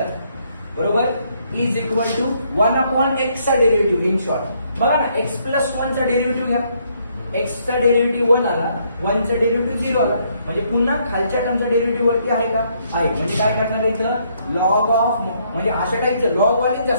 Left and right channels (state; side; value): inverted; both; correlation -0.70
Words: बरोबर is equal to 1 upon x चा डेरिव्हेटिव्ह इन शॉर्ट बघा ना x प्लस 1 चा डेरिव्हेटिव्ह घ्या x चा डेरिव्हेटिव्ह 1 आला 1 चा डेरिव्हेटिव्ह 0 आला म्हणजे पुन्हा खालच्या टर्मचा डेरिव्हेटिव्ह वरती आहे का आहे म्हणजे काय करणार इथं लॉग ऑफ म्हणजे अशा टाईपचं लॉग वाले